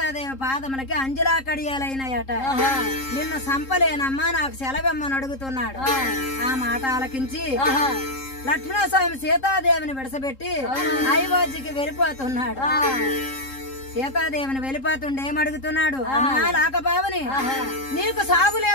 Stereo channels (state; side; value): late; right; 3.8 ms